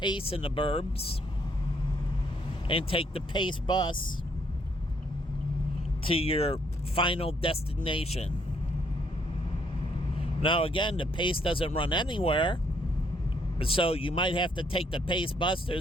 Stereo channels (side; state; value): both; normal; correlation 0.70